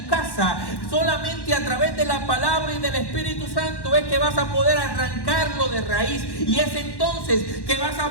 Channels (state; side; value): late; right; 1.1 ms